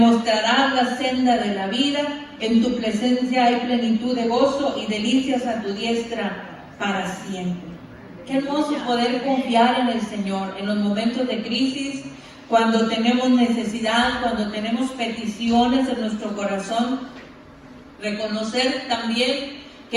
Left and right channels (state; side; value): identical; both; correlation 1.00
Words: la senda de la vida, en tu presencia hay plenitud de gozo y delicias a tu diestra para siempre. Qué hermoso poder confiar en el Señor en los momentos de crisis, cuando tenemos necesidad, cuando tenemos peticiones en nuestro corazón. Reconocer también